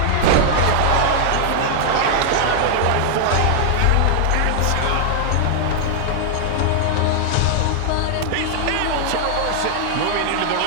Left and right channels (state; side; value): different; both; correlation 0.00